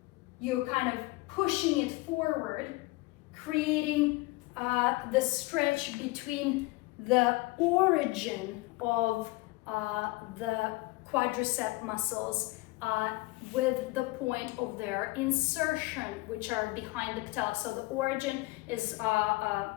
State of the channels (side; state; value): right; quieter; 21.9 dB